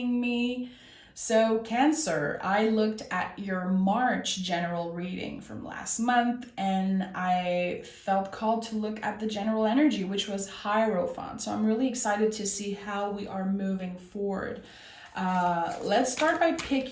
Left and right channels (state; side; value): identical; both; correlation 1.00